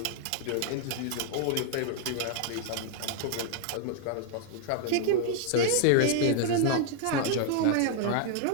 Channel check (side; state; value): both; different; correlation 0.00